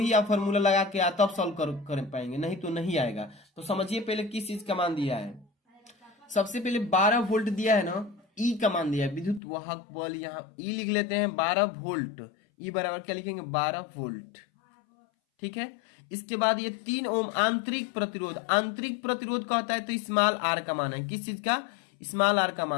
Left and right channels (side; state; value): right; drops out; at 9.4 s